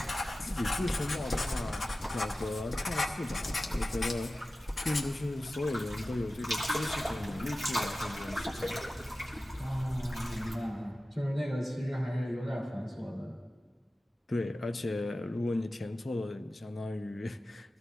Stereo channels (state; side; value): normal; both; correlation 0.95